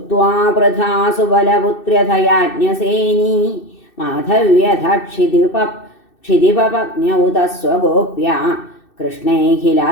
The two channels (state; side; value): late; right; 2.6 ms